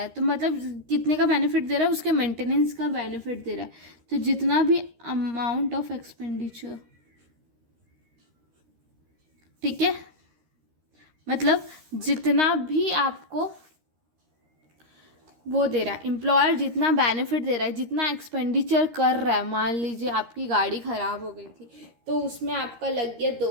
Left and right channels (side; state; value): left; late; 13 ms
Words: है, तो मतलब कितने का बेनिफिट दे रहा है? उसके मेंटेनेंस का बेनिफिट दे रहा है। तो जितना भी अमाउंट ऑफ एक्सपेंडिचर, ठीक है, मतलब जितना भी आपको वो दे रहा है, एम्प्लॉयर जितना बेनिफिट दे रहा है, जितना एक्सपेंडिचर कर रहा है। मान लीजिए आपकी गाड़ी ख़राब हो गई थी, तो उसमें आपका लग गया